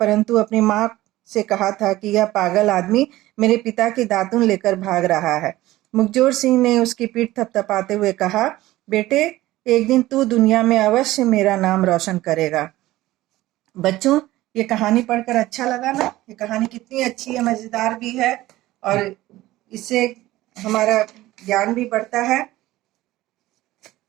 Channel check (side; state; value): left; quieter; 16.8 dB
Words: अपनी माँ से कहा था कि यह पागल आदमी मेरे पिता की दातुन लेकर भाग रहा है। मुखजोर सिंह ने उसकी पीठ थपथपाते हुए कहा, बेटे, एक दिन तू दुनिया में अवश्य मेरा नाम रोशन करेगा। बच्चों, ये कहानी पढ़कर अच्छा लगा ना? ये कहानी कितनी अच्छी है, मजेदार भी है और इससे हमारा ज्ञान भी बढ़ता है।